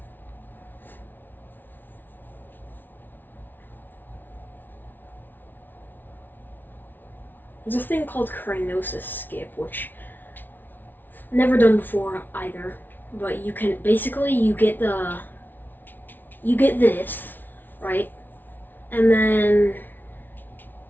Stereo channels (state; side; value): late; right; 0.090 ms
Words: There's a thing called cryonis skip, which I've never done before either. But you can basically you get this, right? And then